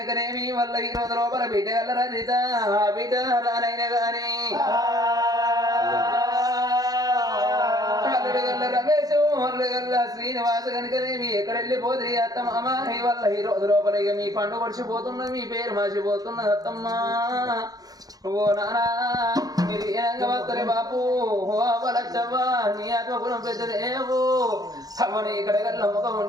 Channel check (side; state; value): left; late; 0.18 ms